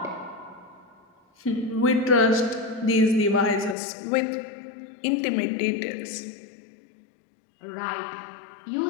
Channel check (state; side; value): drops out; right; at 3.8 s